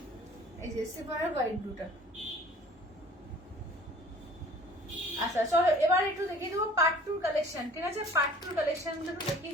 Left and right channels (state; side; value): normal; both; correlation 0.50